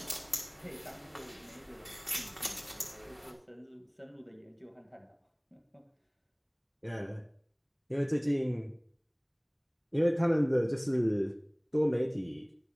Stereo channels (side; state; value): both; identical; correlation 1.00